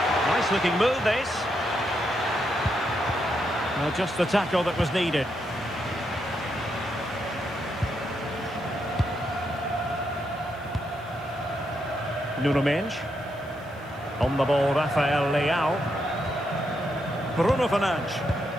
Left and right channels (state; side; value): noise; right; hiss, 29 dB below the sound